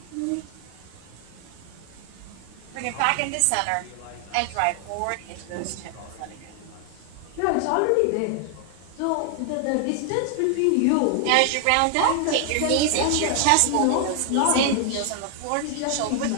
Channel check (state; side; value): different; both; correlation 0.00